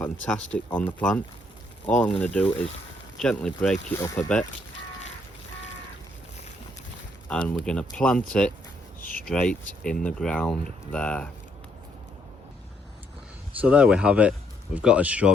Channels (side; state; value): both; normal; correlation 0.71